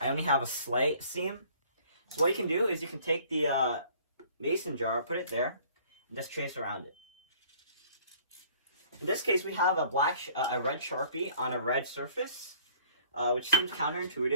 only have a slight seam. So what you can do is you can take the mason jar, put it there, and just trace around it. In this case, we have a red Sharpie on a red surface, which seems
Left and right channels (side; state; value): both; inverted; correlation -0.56